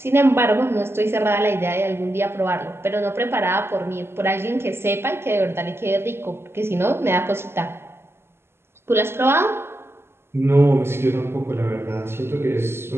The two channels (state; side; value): late; left; 0.12 ms